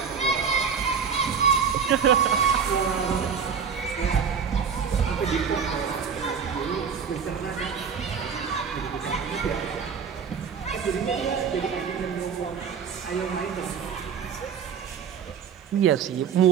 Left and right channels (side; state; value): left; quieter; 6.7 dB